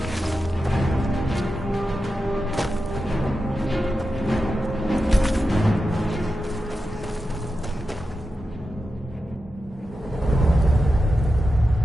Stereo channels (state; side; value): normal; both; correlation 0.90